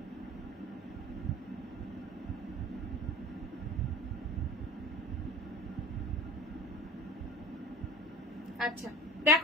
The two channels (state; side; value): normal; both; correlation 0.39